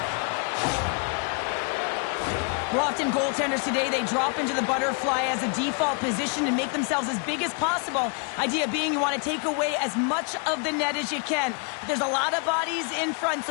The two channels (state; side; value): quieter; right; 38.8 dB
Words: Well, often goaltenders today, they drop into the butterfly as a default position and make themselves as big as possible. Idea being you want to take away as much of the net as you can. But there's a lot of bodies in front,